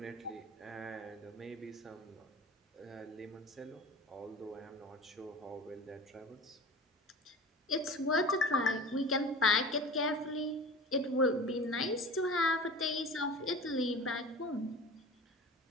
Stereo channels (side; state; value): both; normal; correlation 0.36